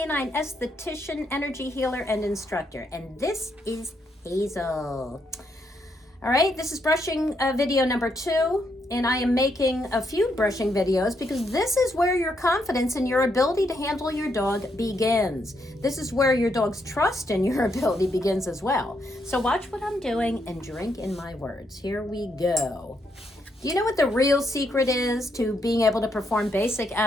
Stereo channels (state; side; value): normal; both; correlation 0.77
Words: esthetician, energy healer, and instructor. And this is Hazel. All right, this is brushing video number 2, and I am making a few brushing videos because this is where your confidence in your ability to handle your dog begins. This is where your dog's trust in your ability begins as well. So watch what I'm doing and drink in my words. Here we go. Do you know what the real secret is to being able to perform basic